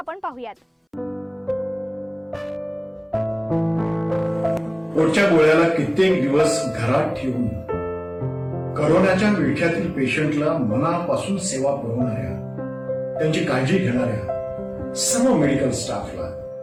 पाहूयात। पोटच्या गोळ्याला कित्येक दिवस घरात ठेवून करोनाच्या विळख्यातील पेशंटला मनापासून सेवा पुरवणाऱ्या, त्यांची काळजी घेणाऱ्या सर्व मेडिकल स्टाफला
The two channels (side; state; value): both; identical; correlation 1.00